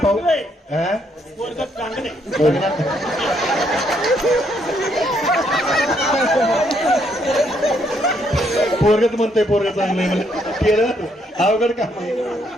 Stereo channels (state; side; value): normal; both; correlation 0.72